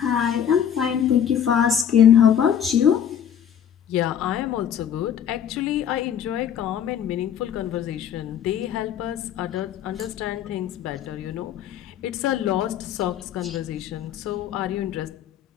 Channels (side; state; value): right; quieter; 9.1 dB